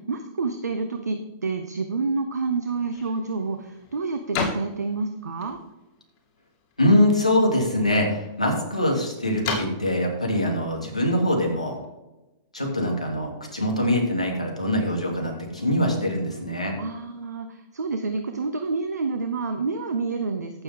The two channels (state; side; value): inverted; both; correlation -0.61